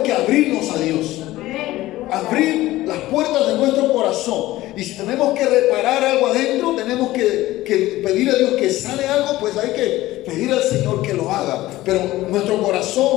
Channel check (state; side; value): quieter; right; 16.7 dB